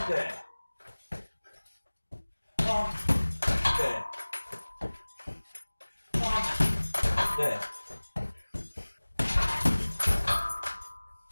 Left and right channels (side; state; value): both; inverted; correlation -1.00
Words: there. Palm, there. Palm, there.